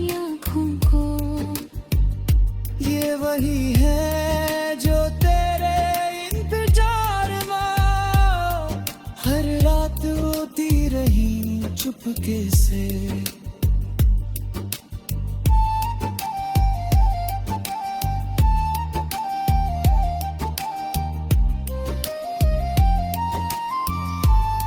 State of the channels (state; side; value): identical; both; correlation 1.00